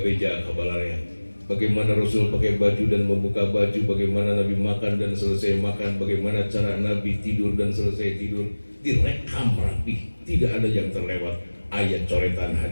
kabalarnya. Bagaimana Rasul pakai baju dan membuka baju, bagaimana Nabi makan dan selesai makan, bagaimana cara Nabi tidur dan selesai tidur, direkam rapi, tidak ada yang terlewat. Ayat coretan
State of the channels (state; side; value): inverted; both; correlation -1.00